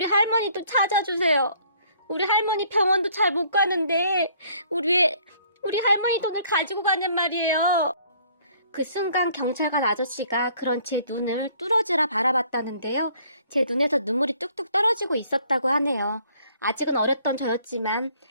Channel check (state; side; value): inverted; both; correlation -0.60